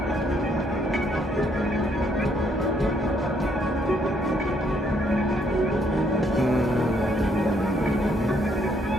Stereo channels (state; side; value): normal; both; correlation 0.70